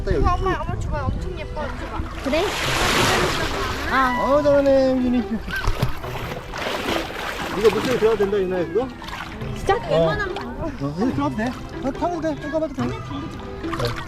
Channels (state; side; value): identical; both; correlation 1.00